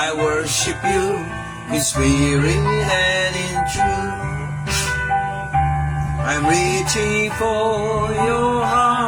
worship you in spirit and in truth. I'm reaching for your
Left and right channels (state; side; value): identical; both; correlation 1.00